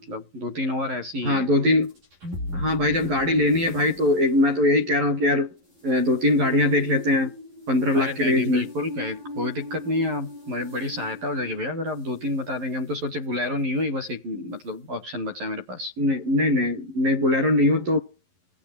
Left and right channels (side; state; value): left; late; 11 ms